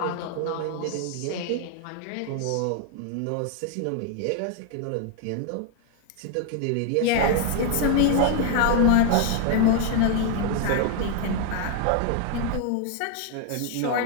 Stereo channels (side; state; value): both; different; correlation 0.00